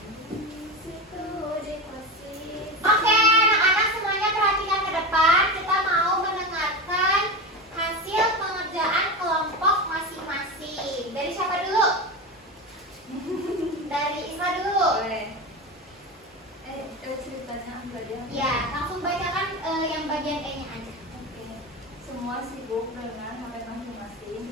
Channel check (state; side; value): normal; both; correlation 0.22